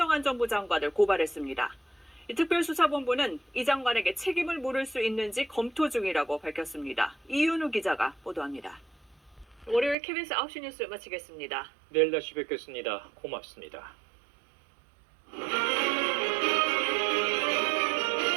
장관을 고발했습니다. 특별수사본부는 이 장관에게 책임을 물을 수 있는지 검토 중이라고 밝혔습니다. 이윤우 기자가 보도합니다. 월요일 KBS 9시 뉴스 마치겠습니다. 내일 다시 뵙겠습니다. 고맙습니다.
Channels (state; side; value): drops out; left; at 10.0 s